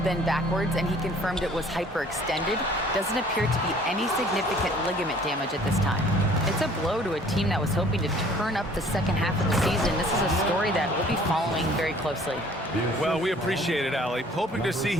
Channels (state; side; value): normal; both; correlation 0.54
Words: bend backwards, and he confirmed it was hyperextended. Doesn't appear to be any significant ligament damage at this time. It's a blow to a team that was hoping to turn up the second half of the season. This is a story that we'll be following very closely. Well, we appreciate it, Allie. Hoping to see